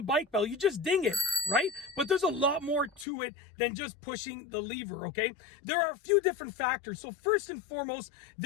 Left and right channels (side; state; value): right; drops out; at 3.1 s